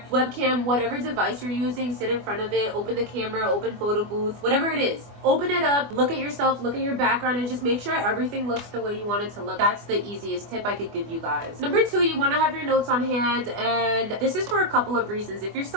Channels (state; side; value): late; left; 24 ms